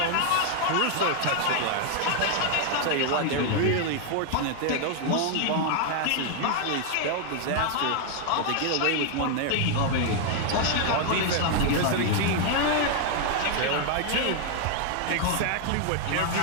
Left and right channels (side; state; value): both; different; correlation 0.00